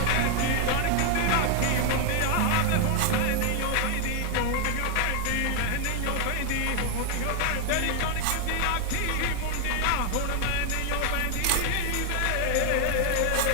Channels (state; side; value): different; both; correlation 0.00